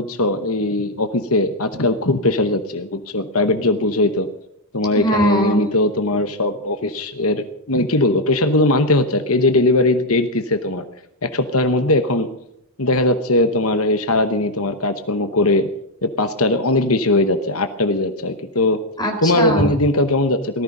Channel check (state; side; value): normal; both; correlation 0.01